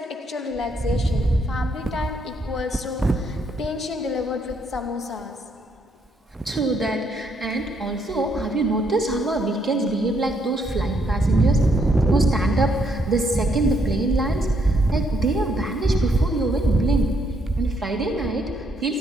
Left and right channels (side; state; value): both; normal; correlation 0.73